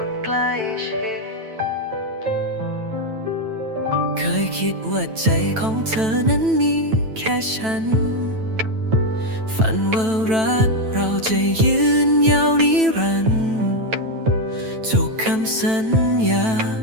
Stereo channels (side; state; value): left; late; 9.1 ms